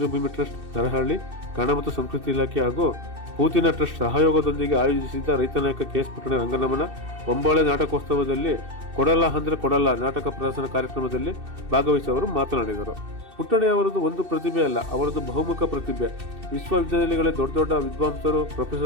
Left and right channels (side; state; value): left; late; 2.7 ms